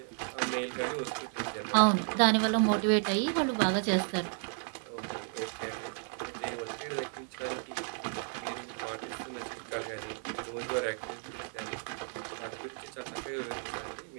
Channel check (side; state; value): left; silent; 56 dB below the other